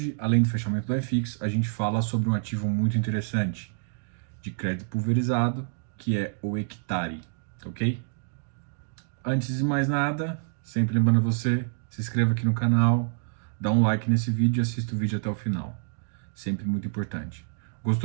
além do fechamento do FX, a gente fala sobre um ativo muito interessante de crédito pulverizado, que é o Hectare, ok? Antes de mais nada, sempre lembrando você, se inscreva aqui no canal, dá um like nesse vídeo e assista o vídeo até o final. Sempre muito importante.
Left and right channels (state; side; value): silent; left; digital silence